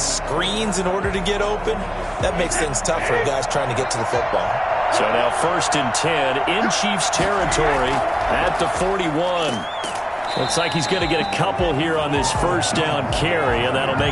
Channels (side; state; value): both; identical; correlation 1.00